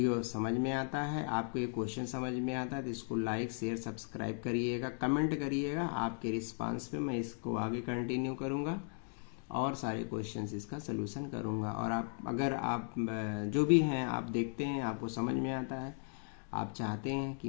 समझ में आता है, आपको ये क्वेश्चन समझ में आता है, तो इसको लाइक शेयर सब्सक्राइब करिएगा, कमेंट करिएगा। आपके रिस्पांस पे मैं इसको आगे कंटिन्यू करूँगा और सारे क्वेश्चंस इसका सलूशन करूँगा। और अगर आप जो भी हैं आप देखते हैं, आपको समझ में आता है, आप चाहते हैं कि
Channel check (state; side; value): silent; right; 53 dB below the other